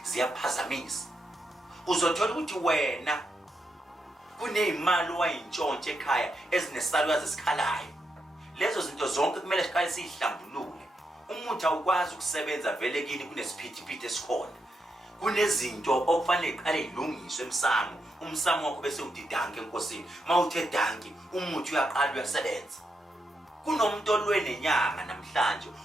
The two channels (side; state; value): both; normal; correlation 0.83